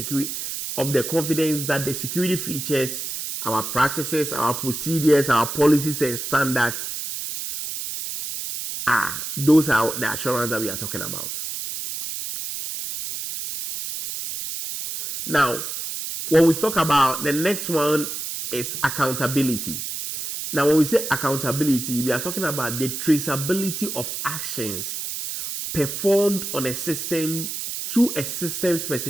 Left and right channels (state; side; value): noise; right; hiss, 5 dB below the sound